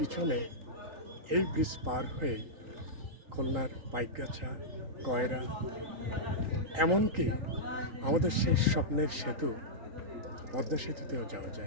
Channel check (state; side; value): late; left; 3.8 ms